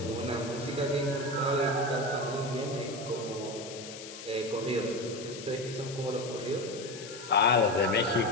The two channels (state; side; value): noise; left; hiss, 13 dB below the sound